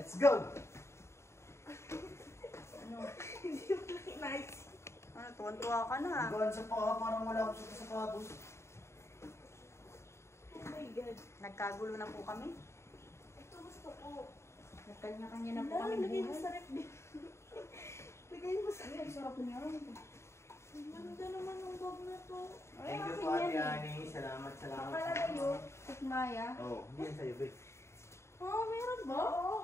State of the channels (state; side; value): late; right; 0.13 ms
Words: go! Hindi mo lang inaisip. Ano, tuwan-tuwa ka na. Ang gaan sa paa, parang wala akong suot sa sapatos. Oh my God. Nagkagulo na po kami. Ito gusto ko. Nagkanya-kanya na po Ano, kami lagay mo buhay. sa ref. Lagay mo sa ref. Sarap niya. Ang ganda naman ng bag na to. Thank you po Ate Ani. Salamat. Napalagayo, Tikmaya. Oo, hindi yan sa'yo, babe. Oh, meron ba? Oo.